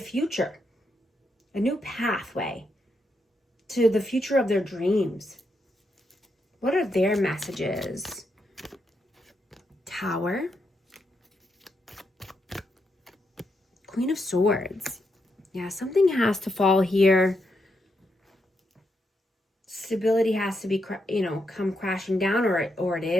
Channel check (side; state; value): both; normal; correlation 0.81